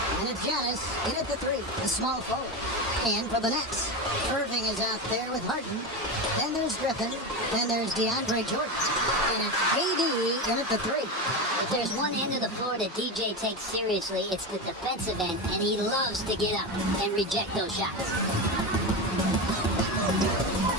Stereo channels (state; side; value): normal; both; correlation 0.18